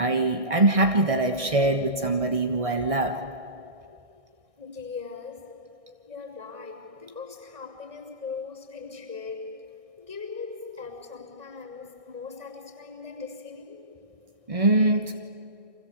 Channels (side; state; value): left; late; 1.6 ms